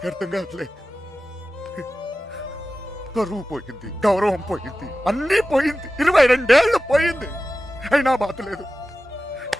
అర్థం కాదులే. పరువు పోయింది, గౌరవం పోయింది, అన్నీ పోయింది. 22 ఏళ్ళు పోయింది, అయినా బాధ లేదు.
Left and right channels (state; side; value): normal; both; correlation 0.95